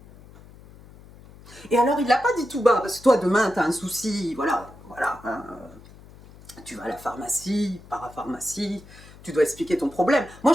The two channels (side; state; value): left; noise; hum, 21 dB below the sound